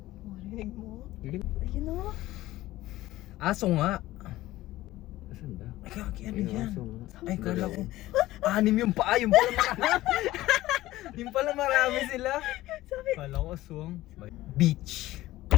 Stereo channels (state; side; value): quieter; right; 16.4 dB